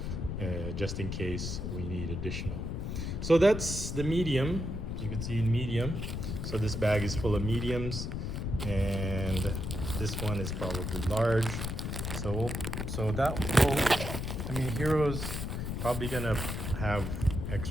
just in case we need additional. So that's the medium. You can see in medium. So this bag is full of mediums, and this one is probably large. Hero's probably gonna have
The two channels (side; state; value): left; noise; rumble, 3 dB below the sound